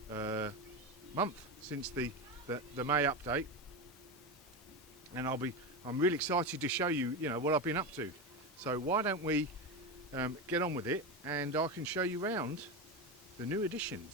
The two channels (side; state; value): both; normal; correlation 0.17